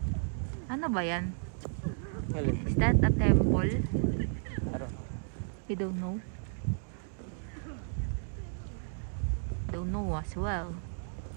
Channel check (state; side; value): silent; left; digital silence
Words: Ano ba yan? Is that a temple? You don't know? Don't know as well.